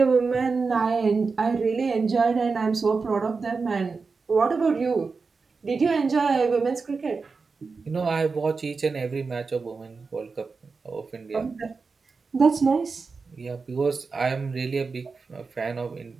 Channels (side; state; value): left; quieter; 4.6 dB